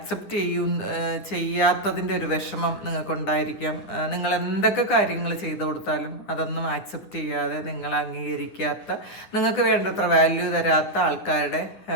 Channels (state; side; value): late; right; 10 ms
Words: ചെയ്യാത്തതിൻ്റെ ഒരു വിഷമം നിങ്ങൾക്കുണ്ടായിരിക്കാം. നിങ്ങൾ എന്തൊക്കെ കാര്യങ്ങൾ ചെയ്തു കൊടുത്താലും അതൊന്നും ആക്സെപ്റ്റ് ചെയ്യാതെ നിങ്ങൾ അംഗീകരിക്കാത്ത, നിങ്ങൾക്ക് വേണ്ടത്ര വാല്യൂ തരാത്ത ആൾക്കാരുടെ